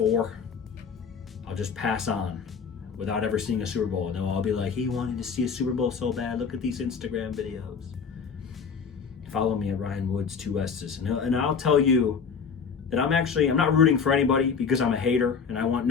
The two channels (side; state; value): right; quieter; 6.0 dB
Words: I'll just pass on without ever seeing a Super Bowl. And I'll be like, he wanted to see a Super Bowl so bad. Look at these Instagram videos. Follow me at Ryan Woods, 2 S's. And I'll tell you that I'm not rooting for anybody because I'm a hater and I want